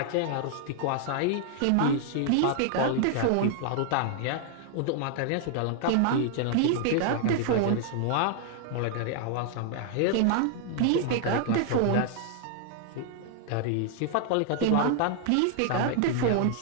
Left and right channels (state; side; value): different; both; correlation 0.00